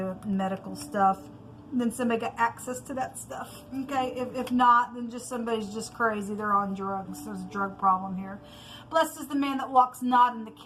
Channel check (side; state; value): both; identical; correlation 1.00